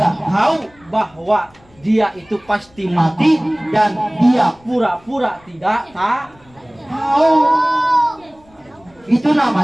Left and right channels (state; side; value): noise; left; rumble, 30 dB below the sound